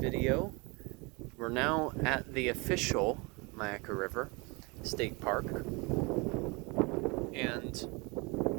We're now at the official Myakka River State Park, and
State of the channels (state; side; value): quieter; left; 28.2 dB